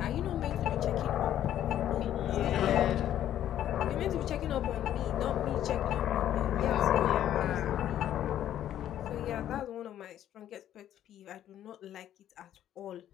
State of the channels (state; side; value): quieter; right; 11.4 dB